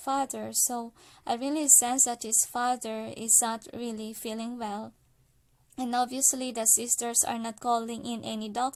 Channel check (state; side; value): identical; both; correlation 1.00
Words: father. So I really sense that his father is not really feeling well. And obviously the sisters are not calling in any